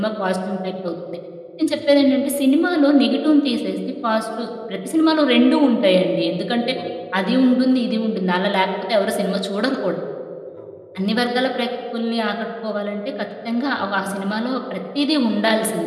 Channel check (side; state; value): both; identical; correlation 1.00